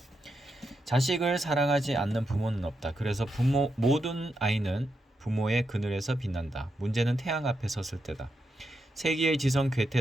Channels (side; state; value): both; normal; correlation 0.85